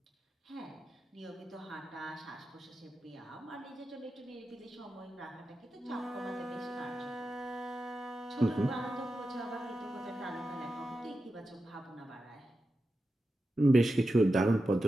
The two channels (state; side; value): normal; both; correlation 0.91